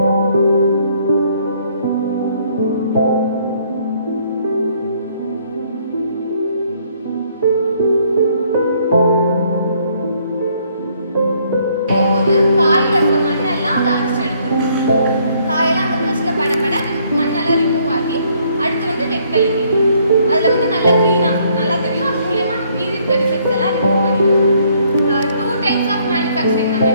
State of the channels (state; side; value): inverted; both; correlation -0.66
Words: காயில் இருக்க மண்ணெல்லாம் அதை அரைச்சி எடுத்துரும். காயெல்லாம் அந்த ப்ரஷ்ல படப்பட மண்ணெல்லாம் ரிமூவ் ஆகி அடுத்து வந்து வெட்களி அதில் வந்து நல்லா க்ளீனாக நல்லா தெரியும். அது மூலயமா மீதி இருக்க டிஃபெக்ட்ஸ் எல்லாம் ரிமூவ் பண்ணிடுவோம். 2 types ஆஃப் மேனுஃபேக்சரிங் நம்ம